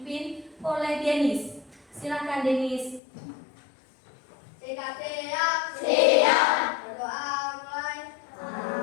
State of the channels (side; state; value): right; drops out; at 3.0 s